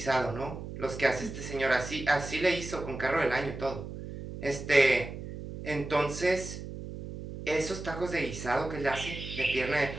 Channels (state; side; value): noise; right; hum, 9 dB below the sound